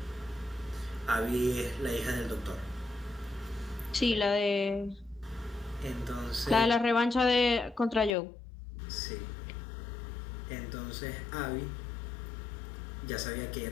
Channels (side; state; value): right; drops out; at 8.2 s